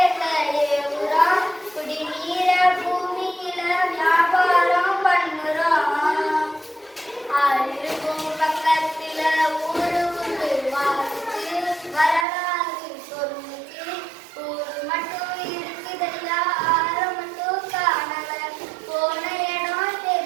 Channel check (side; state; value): left; drops out; at 12.2 s